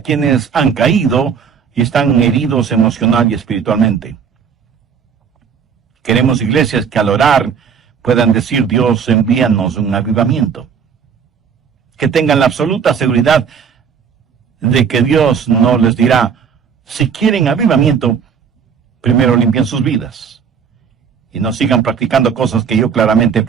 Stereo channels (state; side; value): quieter; left; 6.8 dB